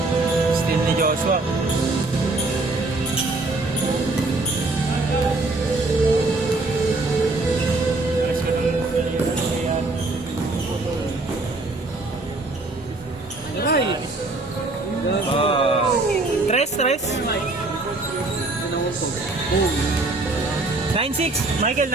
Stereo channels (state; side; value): quieter; left; 3.2 dB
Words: Still ni Joshua. Ay! Tres. 9-6. Michael,